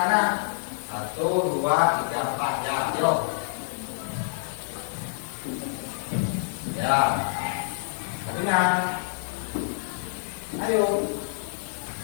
1, 2, 3, 4. Ya, yo. Ya. Kabinan. Ayo.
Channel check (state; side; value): silent; right; digital silence